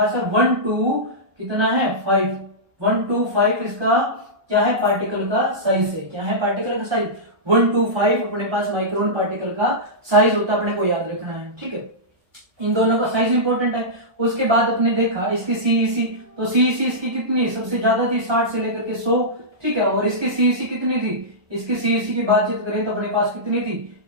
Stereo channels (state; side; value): late; left; 1.2 ms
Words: है 1 to कितना है 5, 1 to 5 इसका क्या है, पार्टिकल का साइज है। क्या है पार्टिकल का साइज, 1 to 5 अपने पास माइक्रोन पार्टिकल का साइज होता है, अपने को याद रखना है, ठीक है। इन दोनों का साइज इंपॉर्टेंट है। उसके बाद अपने देखा इसकी सीईसी, तो सीईसी इसकी कितनी सबसे ज्यादा थी, 60 से लेकर के 100, ठीक है। और इसकी सीईसी कितनी थी, इसकी सीईसी की बातचीत करें तो अपने पास कितनी थी,